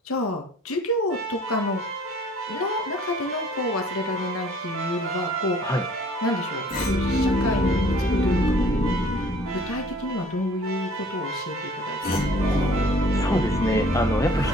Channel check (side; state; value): both; normal; correlation 0.53